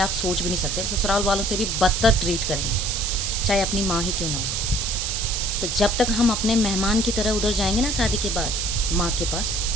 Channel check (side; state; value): right; noise; hiss, 1 dB below the sound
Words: सोच भी नहीं सकते। ससुराल वालों से भी बदतर ट्रीट करेंगे, चाहे अपनी माँ ही क्यों ना हो। तो जब तक हम अपने मेहमान की तरह उधर जाएंगे ना शादी के बाद माँ के पास,